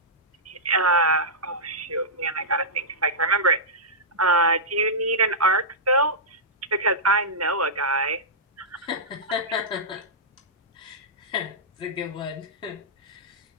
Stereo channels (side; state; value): both; normal; correlation -0.14